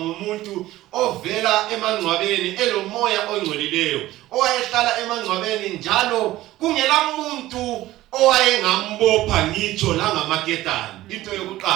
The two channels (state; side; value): quieter; left; 16.1 dB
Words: ovela emangcwabeni elomoya ongcolileyo owayehlala emangcwabeni njalo kungela muntu owayengambopha ngitsho la ngamaketani into